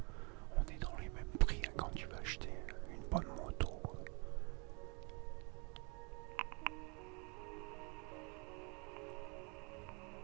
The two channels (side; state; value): left; quieter; 32.3 dB